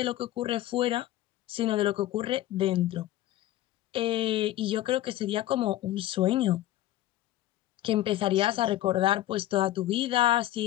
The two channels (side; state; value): right; quieter; 14.5 dB